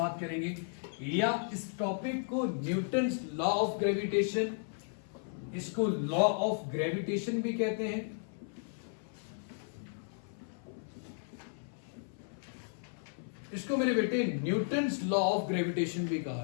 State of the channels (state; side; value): silent; right; 55 dB below the other